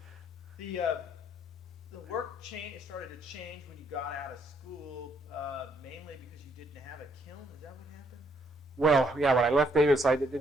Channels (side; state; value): both; normal; correlation 0.70